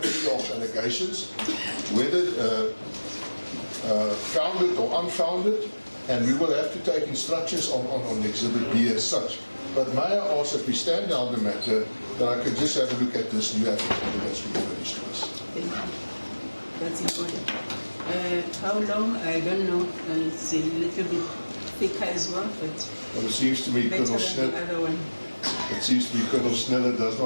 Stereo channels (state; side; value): inverted; both; correlation -1.00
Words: of allegations, whether founded or unfounded, and we will have to take instructions on Exhibit B as such. But may I ask that we stand down the matter, that I can just have a look at this new affidavit that's been furnished to us. Thank you. That's important. How long? I don't know. It's a little bit thicker as well, but Well, it seems to me better Colonel than the Snell, other one. it seems to me Colonel Sneller does